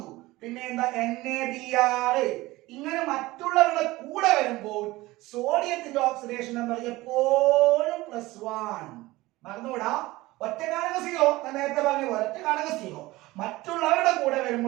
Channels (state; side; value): quieter; left; 19.3 dB